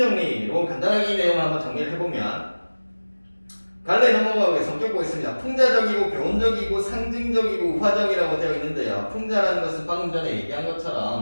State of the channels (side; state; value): both; inverted; correlation -1.00